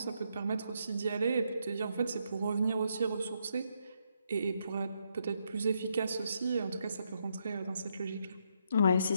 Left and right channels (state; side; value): inverted; both; correlation -0.77